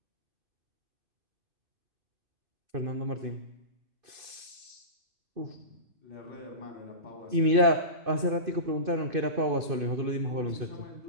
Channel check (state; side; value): late; left; 2.5 ms